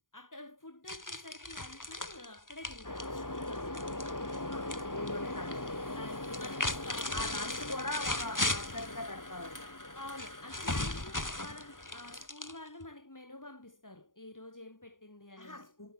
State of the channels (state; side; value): late; right; 0.89 ms